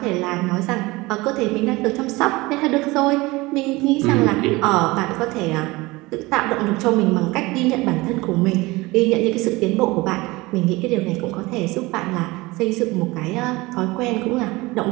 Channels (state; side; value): quieter; left; 21.7 dB